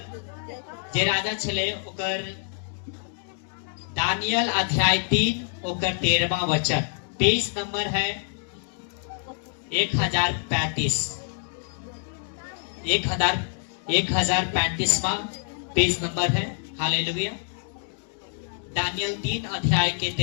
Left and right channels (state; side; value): silent; right; digital silence